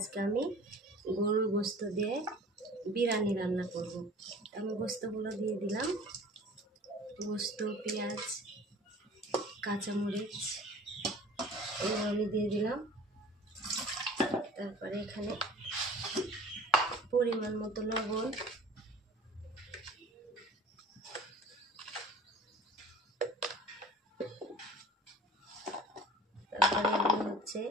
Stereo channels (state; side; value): normal; both; correlation 0.45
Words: আমি গরুর গোস্ত দিয়ে বিরিয়ানি রান্না করব। আমি গোস্তগুলো দিয়ে দিলাম, গোস্ত, পেঁয়াজ, কাঁচামরিচ এগুলো আমি দিয়ে দিলাম। তারপরে এখানে পরিমাণ মতো লবণ, তারপরে এগুলো হচ্ছে